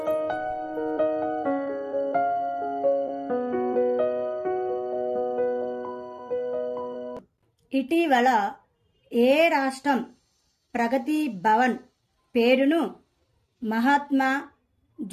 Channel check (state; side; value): identical; both; correlation 1.00